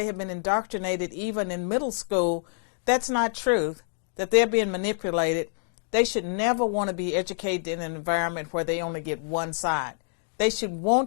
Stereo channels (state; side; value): silent; right; 60 dB below the other